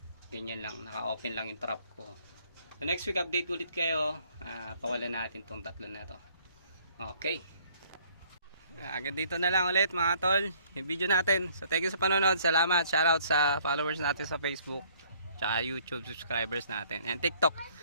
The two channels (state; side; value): inverted; both; correlation -0.61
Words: Ganyan lang, naka-open lang yung trap ko. So next week update ulit kayo, pawalan natin tong tatlo na to. Okay. Agad dito na lang ulit mga tol, yung video natin. So thank you sa panonood, salamat, shoutout sa followers natin sa Facebook, tsaka YouTube subscribers natin, and TikTok.